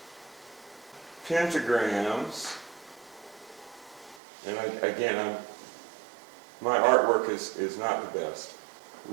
pentagrams. And my artwork is not the best.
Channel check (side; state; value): left; drops out; at 4.2 s